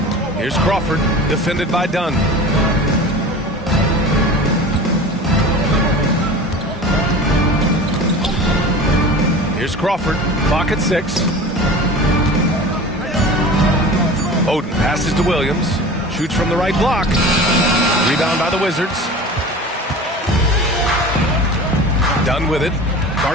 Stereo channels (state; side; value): normal; both; correlation 0.36